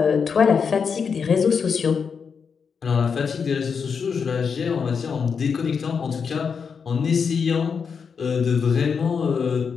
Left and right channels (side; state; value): right; quieter; 6.1 dB